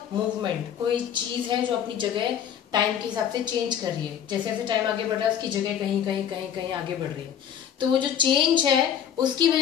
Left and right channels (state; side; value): quieter; right; 9.0 dB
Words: मूवमेंट। कोई चीज है जो अपनी जगह टाइम के हिसाब से चेंज कर रही है। जैसे जैसे टाइम आगे बढ़ रहा है उसकी जगह कहीं कहीं कहीं कहीं आगे बढ़ रही है। तो वो जो चेंज है उसकी